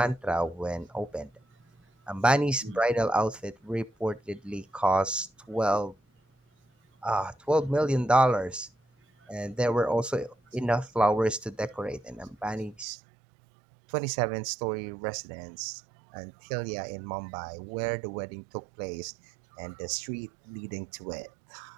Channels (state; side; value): drops out; left; at 12.9 s